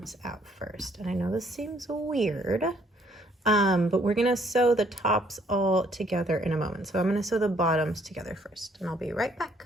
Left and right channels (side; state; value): both; normal; correlation 0.65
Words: out first. And I know this seems weird, but we're gonna sew the tops all together in a moment. So I'm gonna sew the bottoms together first and I'll be right back.